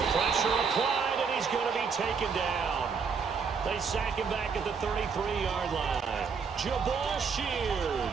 Pressure applied, and he's going to be taken down. They sack him back at the 33-yard line. Jabal Sheard.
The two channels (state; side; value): quieter; left; 5.7 dB